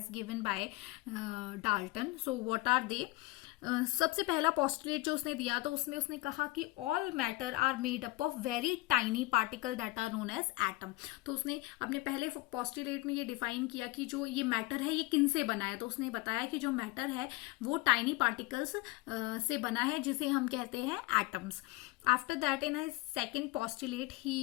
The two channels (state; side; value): quieter; right; 21.0 dB